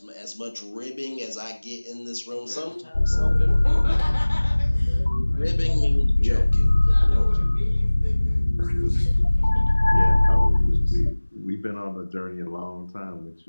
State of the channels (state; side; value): inverted; both; correlation -1.00